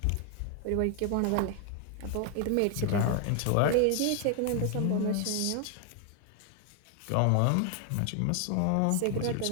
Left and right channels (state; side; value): different; both; correlation 0.00